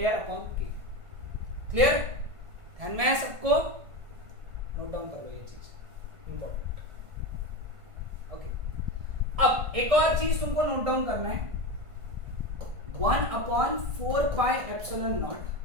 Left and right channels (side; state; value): left; late; 1.5 ms